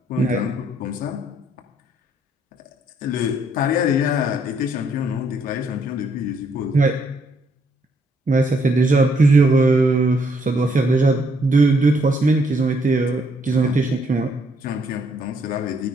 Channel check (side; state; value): both; normal; correlation 0.70